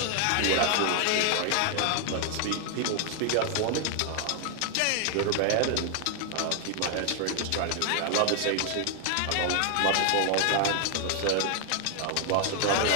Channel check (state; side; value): different; both; correlation 0.00